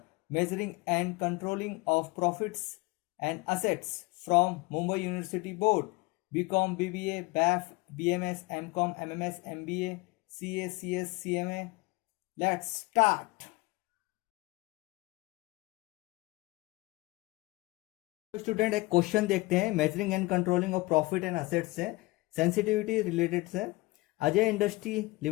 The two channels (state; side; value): quieter; right; 21.8 dB